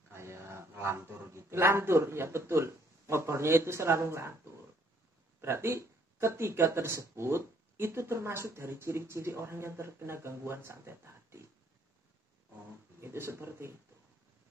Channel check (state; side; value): normal; both; correlation 0.65